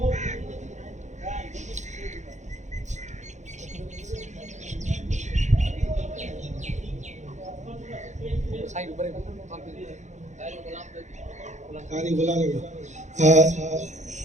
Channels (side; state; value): left; late; 0.34 ms